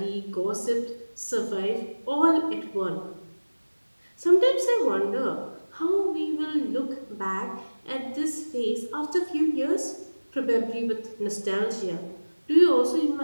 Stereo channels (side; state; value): both; inverted; correlation -1.00